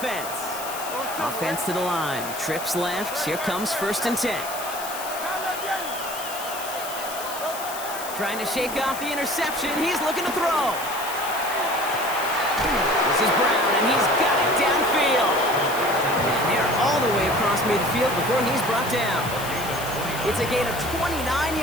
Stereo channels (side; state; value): left; noise; hiss, 10 dB below the sound